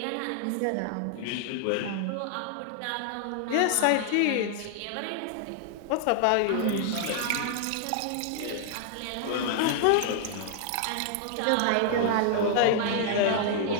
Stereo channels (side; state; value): both; different; correlation 0.00